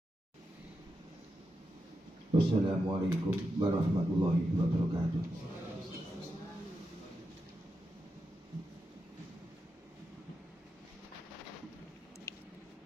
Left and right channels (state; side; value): normal; both; correlation 0.87